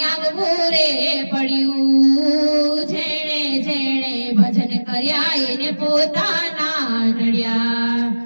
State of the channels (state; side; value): inverted; both; correlation -1.00